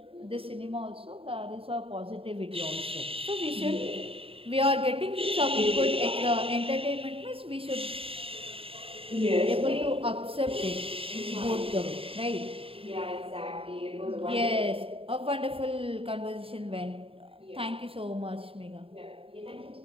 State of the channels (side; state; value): left; late; 0.27 ms